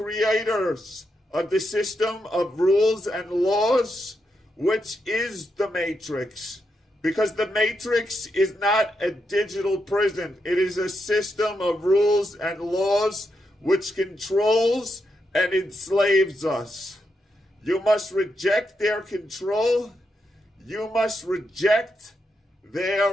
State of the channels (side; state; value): both; normal; correlation 0.83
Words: of the system of rules and laws, which is the matrix. Because the matrix is not a digital prison. It is a system of rules and laws which controls and enslaves us. You must reject their control. You must reject